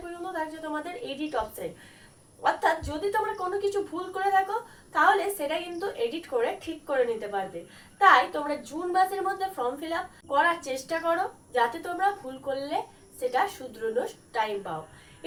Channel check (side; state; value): both; identical; correlation 1.00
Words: পর্যন্ত থাকছে তোমাদের এডিট অপশন। অর্থাৎ যদি তোমরা কোনো কিছু ভুল করে থাকো তাহলে সেটা কিন্তু এডিট করে ঠিক করে নিতে পারবে। তাই তোমরা জুন মাসের মধ্যে ফর্ম ফিল আপ করার চেষ্টা করো, যাতে তোমরা ভুল করলে সেটা শুধরানোর টাইম পাও।